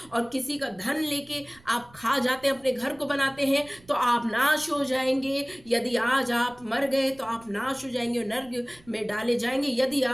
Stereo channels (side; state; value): right; noise; rumble, 26 dB below the sound